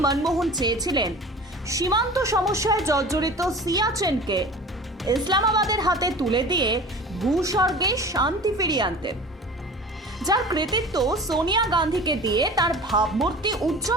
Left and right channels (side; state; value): both; normal; correlation 0.39